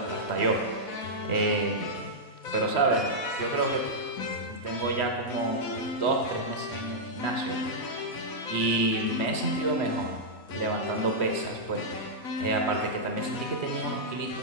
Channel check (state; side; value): late; right; 3.1 ms